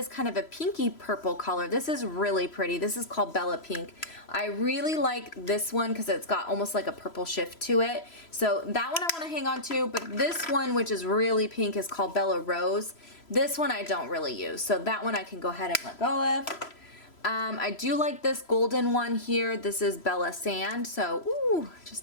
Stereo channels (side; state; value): right; late; 3.0 ms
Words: kind of a pinky purple color. This is really pretty. This is called Bella Pink. I really like this one because it's got almost like a purple shift to it. So that one I want to hang on to, but this one, which is really pink, is called Bella Rose. This one I don't really use, so that one I can go ahead and let go of. I do like this golden one here. This is Bella Sand, so ooh,